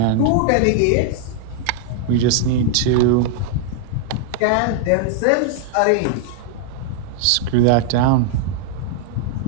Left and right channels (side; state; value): both; different; correlation 0.00